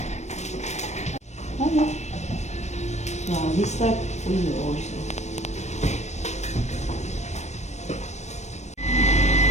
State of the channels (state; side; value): late; right; 0.33 ms